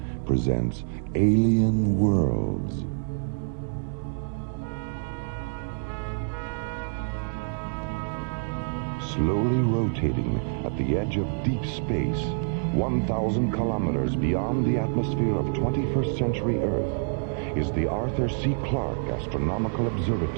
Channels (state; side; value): silent; left; digital silence